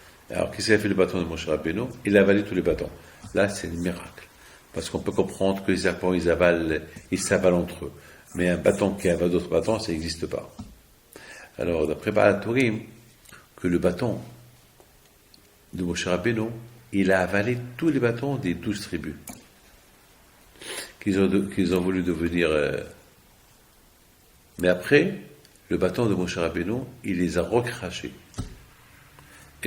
Alors qu'est-ce qu'il a fait le bâton de Moshe Rabbeinu? Il a avalé tous les bâtons. Là, c'est un miracle. Parce qu'on peut comprendre que les serpents, ils s'avalent entre eux. Mais un bâton qui avale d'autres bâtons, ça n'existe pas. Alors, d'après Baal-Turim, que le bâton de Moshe Rabbeinu, il a avalé tous les bâtons des 12 tribus, qu'ils ont voulu devenir. Mais après, le bâton de Moshe Rabbeinu, il les a recrachés.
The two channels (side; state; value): both; identical; correlation 1.00